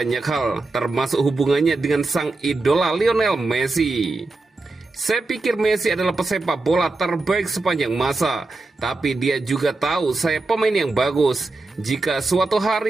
hal, termasuk hubungannya dengan sang idola Lionel Messi. Saya pikir Messi adalah pesepak bola terbaik sepanjang masa, tapi dia juga tahu saya pemain yang bagus. Jika suatu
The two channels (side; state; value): left; quieter; 3.3 dB